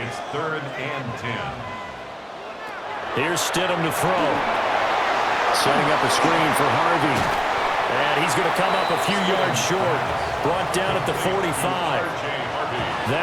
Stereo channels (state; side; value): identical; both; correlation 1.00